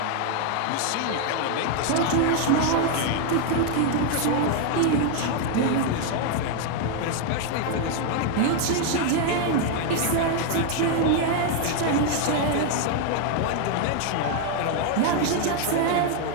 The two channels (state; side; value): different; both; correlation 0.00